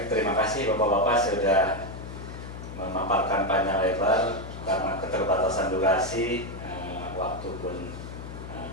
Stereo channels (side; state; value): left; noise; hum, 10 dB below the sound